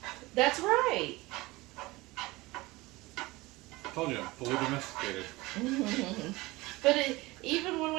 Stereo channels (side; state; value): left; quieter; 21.2 dB